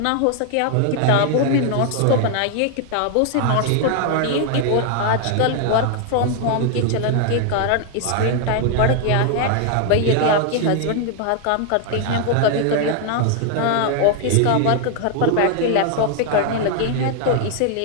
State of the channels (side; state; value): both; different; correlation 0.00